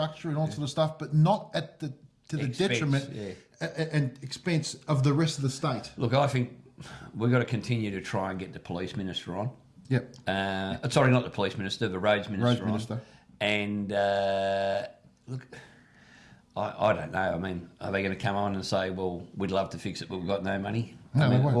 and all sort of stuff, but not at the detriment and expense of the rest of the state. Look, I think we've got to continue to try and get the police minister on. Yep. Sorry, not the police minister, the roads minister. Minister. And look, I don't know. I mean, are they going to come on and say, well, we'd love to fix it, but we've got no money? No, I mean, they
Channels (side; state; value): both; identical; correlation 1.00